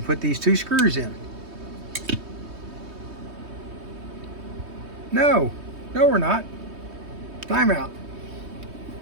put these two screws in. No, we're not. Time out.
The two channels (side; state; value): left; late; 3.2 ms